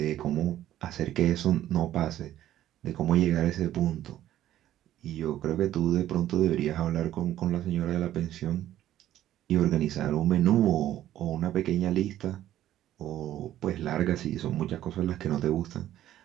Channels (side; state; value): left; quieter; 12.7 dB